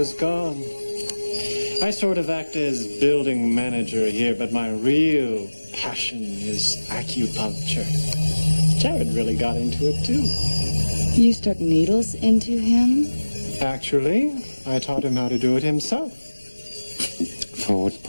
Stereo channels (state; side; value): inverted; both; correlation -1.00